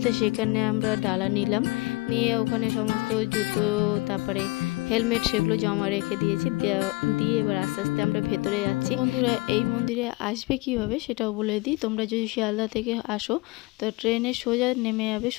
তো সেখানে আমরা ডালা নিলাম, নিয়ে ওখানে সমস্ত জুতো তারপরে হেলমেট সেগুলো জমা রেখে দিয়েছি, দিয়ে এবার আস্তে আস্তে আমরা ভেতরে যাচ্ছি। বন্ধুরা এই মন্দিরে আসবে কিভাবে সেটাও বলে দিই। তোমরা যদি শিয়ালদা থেকে আসো তো ট্রেনে সোজা নেমে যাবে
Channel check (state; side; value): quieter; right; 23.2 dB